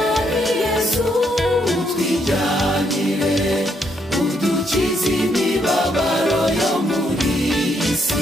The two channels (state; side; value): normal; both; correlation 0.74